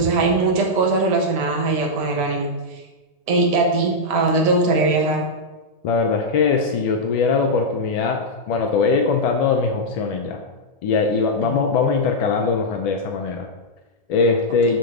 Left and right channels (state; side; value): late; right; 1.7 ms